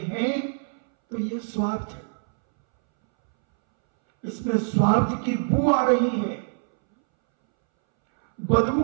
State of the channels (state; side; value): silent; left; 63 dB below the other